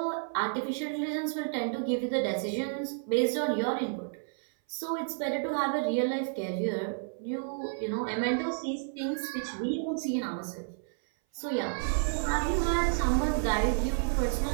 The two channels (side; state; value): left; silent; 57 dB below the other